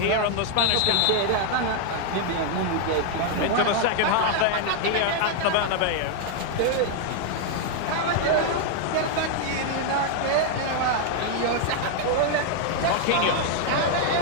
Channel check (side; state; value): both; different; correlation 0.00